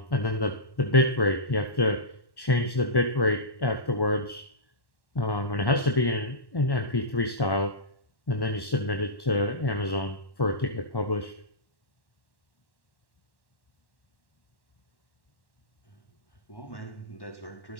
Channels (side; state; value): right; late; 1.1 ms